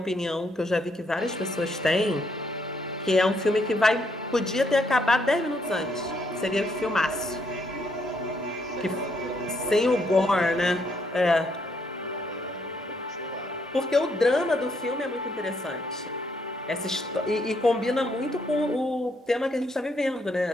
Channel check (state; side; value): normal; both; correlation 0.73